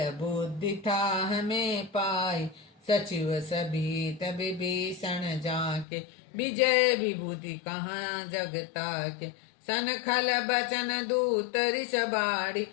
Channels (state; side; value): drops out; right; at 5.9 s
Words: बुद्धि था हमें पाई। सचिव सभीत विभीषण जाके, विजय विभूति कहाँ जगता के। सन खल बचन दूत ऋष बाड़ी,